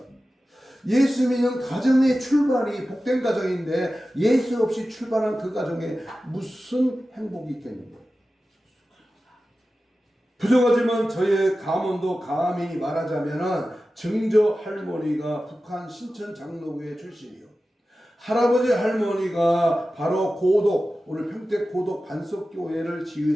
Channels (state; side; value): normal; both; correlation 0.94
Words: 예수 믿는 가정의 출발이 복된 가정인데 예수 없이 출발한 그 가정에 무슨 행복이 있겠는가? 부족하지만 저의 가문도 감히 말하자면 증조 할머니가 북한 신천 장로교회 출신이요, 할아버지 할머니가 바로 고독, 오늘 평택 고독 반석교회를